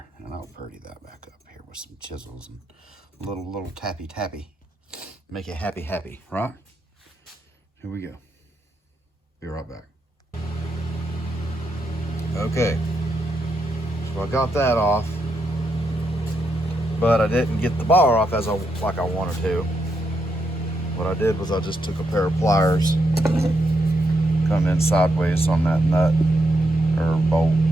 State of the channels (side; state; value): both; normal; correlation 0.81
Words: and I'll purdy that back up here with some chisels and little tappy. Make it happy, right? Here we go. Be right back. Okay, so I got that off, but I didn't get the bar off like I wanted to. What I did was I just took a pair of pliers, come in sideways on that nut or bolt,